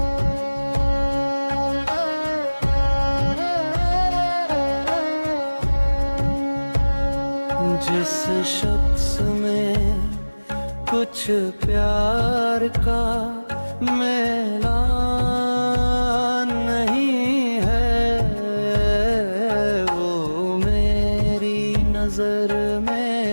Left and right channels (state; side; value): inverted; both; correlation -1.00